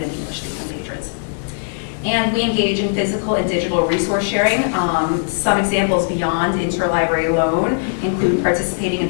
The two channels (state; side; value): silent; right; digital silence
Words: English speaking patrons. And we engage in physical and digital resource sharing. Some examples beyond interlibrary loan include participating in